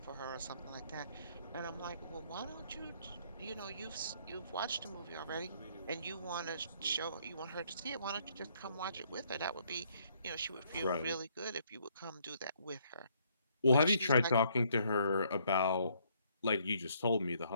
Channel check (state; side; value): inverted; both; correlation -0.68